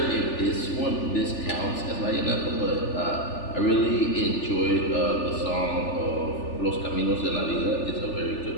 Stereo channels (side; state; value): right; late; 3.4 ms